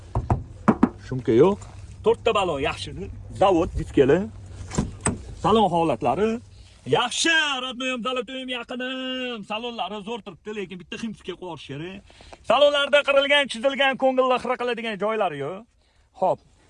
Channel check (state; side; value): identical; both; correlation 1.00